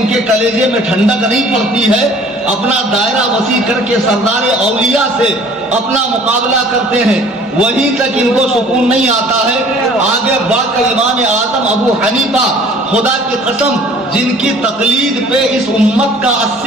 کے کلیجے میں ٹھنڈک نہیں پڑتی ہے. اپنا دائرہ وسیع کر کے سردار اولیاء سے اپنا مقابلہ کرتے ہیں, وہیں تک ان کو سکون نہیں آتا ہے. آگے بڑھ کر امام اعظم ابو حنیفہ خدا کی قسم جن کی تقلید پہ اس امت کا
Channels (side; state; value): both; normal; correlation 0.52